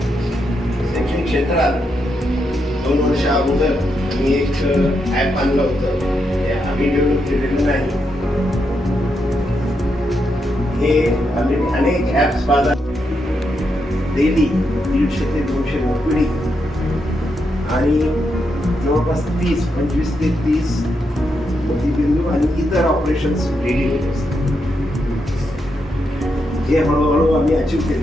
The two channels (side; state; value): both; normal; correlation 0.82